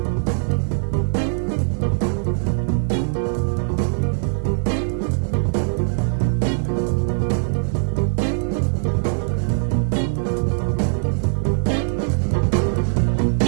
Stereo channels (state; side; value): silent; left; digital silence